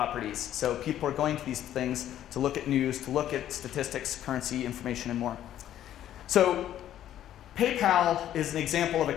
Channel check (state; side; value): quieter; right; 11.7 dB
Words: So people are going to these things to look at news, to look at statistics, currency, information, and more. So PayPal is an example of a